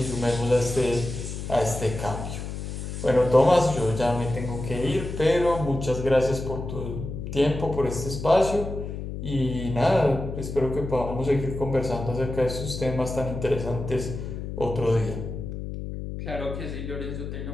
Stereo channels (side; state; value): left; noise; hum, 7 dB below the sound